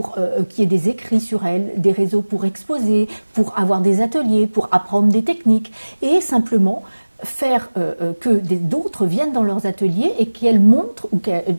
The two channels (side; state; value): both; inverted; correlation -1.00